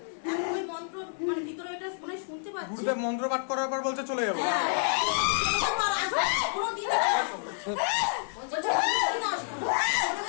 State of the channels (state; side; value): silent; right; digital silence